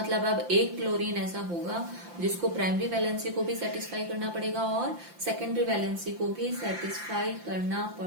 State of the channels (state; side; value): late; left; 5.8 ms